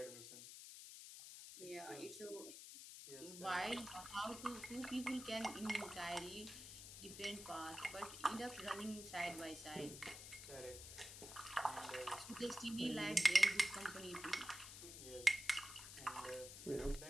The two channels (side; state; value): left; noise; hiss, 11 dB below the sound